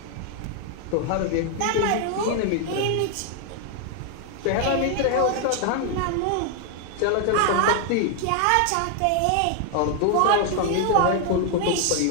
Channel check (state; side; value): different; both; correlation 0.00